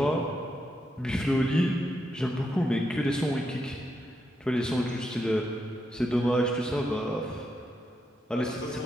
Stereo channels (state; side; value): normal; both; correlation 0.82